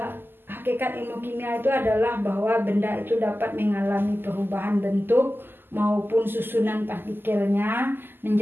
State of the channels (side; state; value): left; late; 0.097 ms